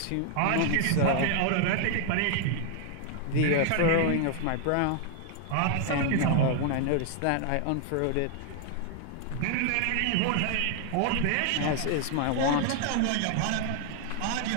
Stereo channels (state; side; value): different; both; correlation 0.00